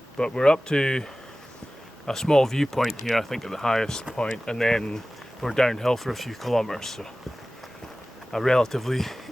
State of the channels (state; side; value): normal; both; correlation 0.97